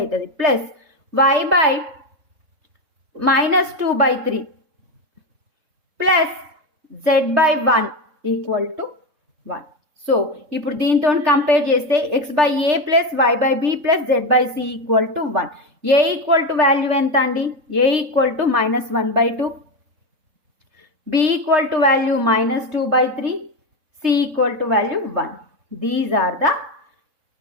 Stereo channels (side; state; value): left; late; 3.3 ms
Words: plus y/-2/3 plus z/1 equal to 1. So ఇప్పుడు దీంతో కంపేర్ చేస్తే x/a plus y/b plus z/c equal to 1. a equal to value ఎంత అండి, a equal to -1/2, b equal to value -2/3, c equal to value 1. These are the